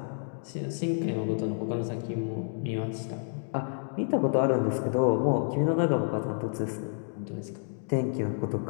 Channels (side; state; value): right; silent; digital silence